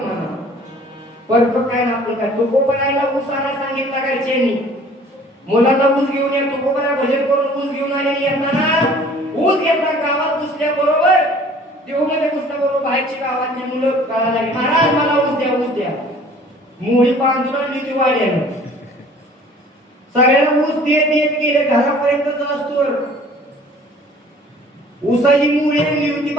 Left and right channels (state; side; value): normal; both; correlation 0.51